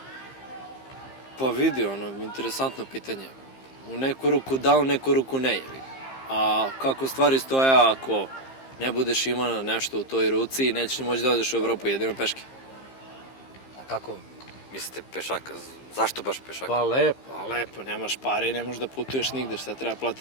Pa vidi, interesantno pitanje. U neku ruku da, u neku ruku ne. A kako stvari stoje ako ne budeš imao nešto u toj ruci, nećeš ni moći da odeš u Evropu, jedino peške. A kako mislite pešaka? Zašto baš pešaka? Pa lepo, nemaš pare i ne možeš da putuješ nigde, šta treba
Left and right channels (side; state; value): right; late; 15 ms